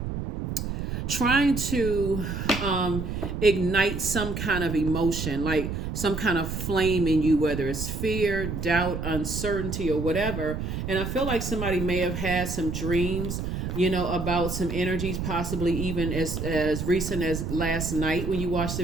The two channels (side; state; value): right; noise; rumble, 4 dB below the sound